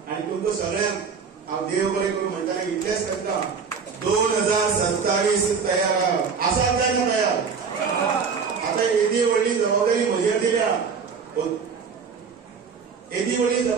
आनी तुमकां सगळ्यांक हांव देव बरें करून म्हणटाले इतलेंच करता 2027 तयार आसात काय ना तयार. आता येदी व्हडली जबाबदारी म्हजेर दिल्या. येदी व्हडली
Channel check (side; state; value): left; quieter; 5.8 dB